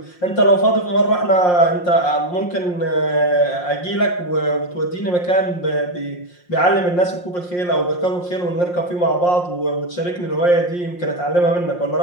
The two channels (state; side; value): late; right; 5.6 ms